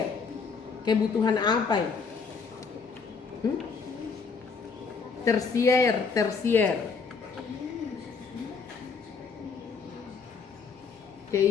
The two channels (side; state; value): right; quieter; 5.3 dB